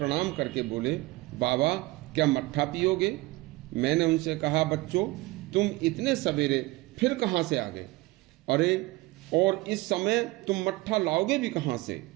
करके बोले, बाबा, क्या मट्ठा पियोगे? मैंने उनसे कहा, बच्चों, तुम इतने सवेरे फिर कहां से आ गए? अरे, और इस समय तुम मट्ठा लाओगे भी कहां से?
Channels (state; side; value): quieter; left; 20.8 dB